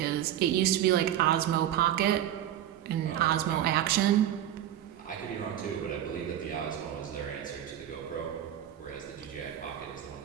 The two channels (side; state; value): left; quieter; 11.3 dB